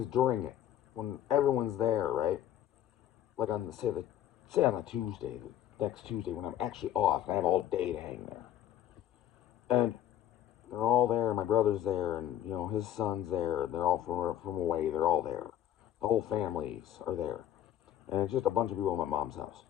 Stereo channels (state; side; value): quieter; right; 11.4 dB